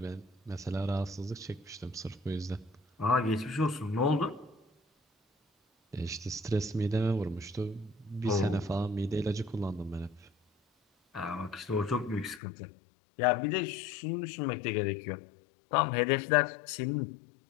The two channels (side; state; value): right; drops out; at 12.4 s